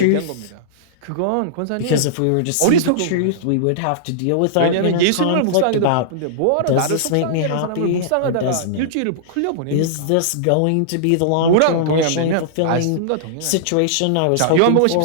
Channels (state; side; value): different; both; correlation -0.02